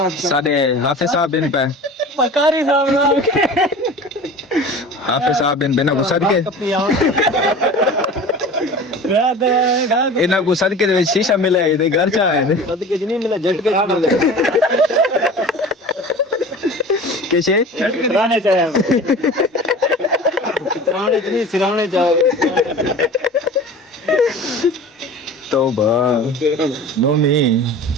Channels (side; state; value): both; normal; correlation 0.38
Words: साडे हाफिज साहब बिन पे पकारी साहब ना हाफिज साहब बिन बिना को सदके रात इना को सदके दे विच शीशा मिले दे घर चा है सदके नहीं मिला झटके मिले कैसे रहने चाहिए कितराने नहीं सिराने जाओ तौबा नोमी